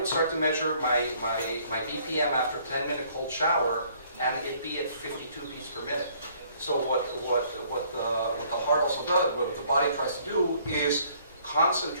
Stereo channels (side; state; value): both; inverted; correlation -0.61